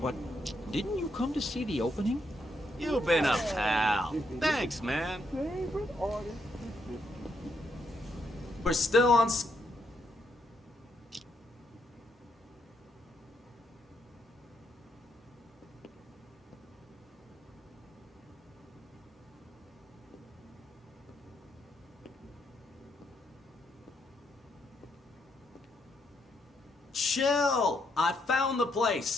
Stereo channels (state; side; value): normal; both; correlation 0.77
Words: didn't you come to see the opening? You've been a pal. Thanks, man. We're still on... Chill! I found the